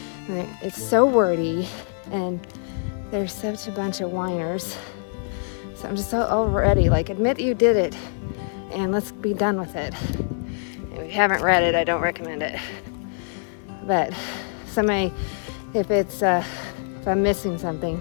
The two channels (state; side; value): silent; right; 56 dB below the other